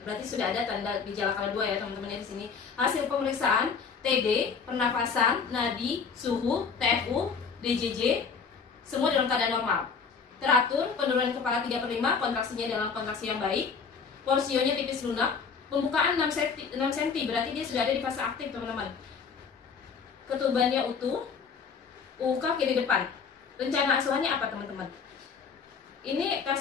berarti sudah ada tanda gejala skala 2 ya teman-teman ya di sini. Hasil pemeriksaan TD, pernafasan, nadi, suhu, TFU, DJJ, semua dalam keadaan normal. Teratur, penurunan kepala 3/5, kontraksinya dalam kontraksi yang baik. Porsionya tipis lunak. Pembukaan 6 cm, berarti dia sudah ada di fase aktif teman-teman. Ketubannya utuh. UUK kiri depan. Rencana asuhannya apa teman-teman? Ini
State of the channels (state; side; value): quieter; right; 5.8 dB